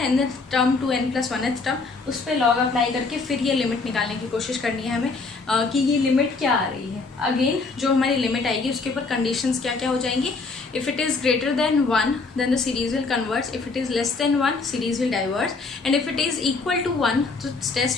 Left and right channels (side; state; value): right; quieter; 4.0 dB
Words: nth term to n+1th term, उस पर लॉग अप्लाई करके फिर ये लिमिट निकालने की कोशिश करनी है हमें कि ये लिमिट क्या आ रही है। अगेन जो हमारी लिमिट आएगी उसके ऊपर कंडीशंस क्या क्या हो जाएंगी। If it is greater than 1 then the series will converge, if it is less than 1 series will diverge, and if it is equal to 1 तो